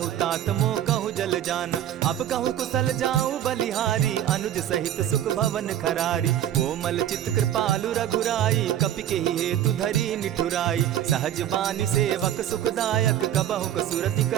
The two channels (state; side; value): quieter; left; 11.2 dB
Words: तात मोह कहु जल जाना। अब कहु कुशल जाऊं बलिहारी अनुज सहित सुख भवन खरारी। कोमल चित कृपालु रघुराई कपि के ही हेतु धरी निठुराई। सहज बानी सेवक सुखदायक कबहु कसुरति